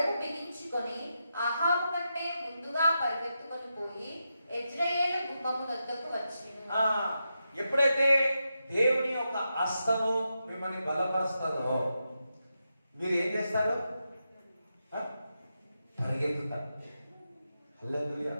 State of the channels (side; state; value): both; inverted; correlation -0.87